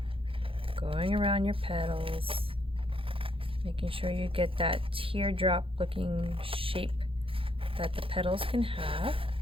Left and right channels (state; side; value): late; left; 0.26 ms